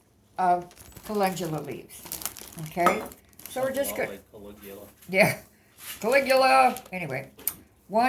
of calendula leaves. Okay. So we're just good. Like Caligula. Yeah. Caligula. Anyway,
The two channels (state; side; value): identical; both; correlation 1.00